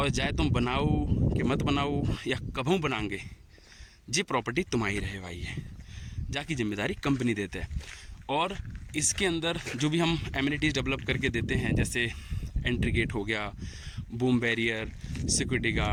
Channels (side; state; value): both; identical; correlation 1.00